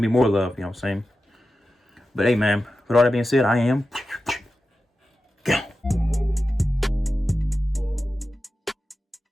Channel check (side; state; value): both; normal; correlation 0.93